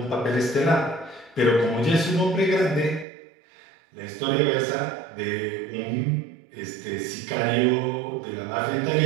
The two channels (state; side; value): drops out; left; at 3.1 s